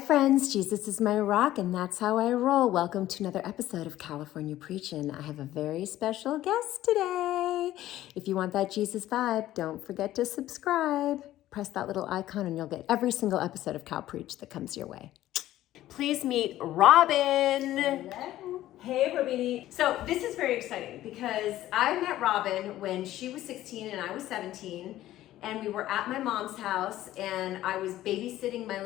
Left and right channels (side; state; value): right; quieter; 14.2 dB